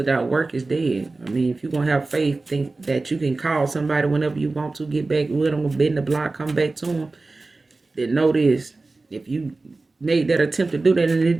work is dead. I mean, if you're going to have faith, think that you can call somebody whenever you want to, get back with them, bend the block, come back to them, then know this. If you made that attempt to do that and it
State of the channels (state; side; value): quieter; left; 3.5 dB